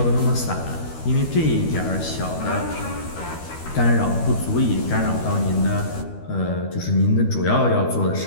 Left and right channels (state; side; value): late; right; 12 ms